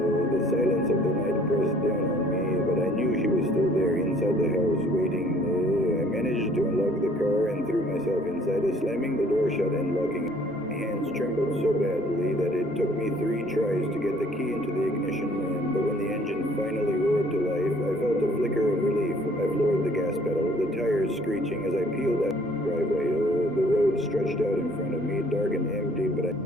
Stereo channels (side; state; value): both; normal; correlation 0.57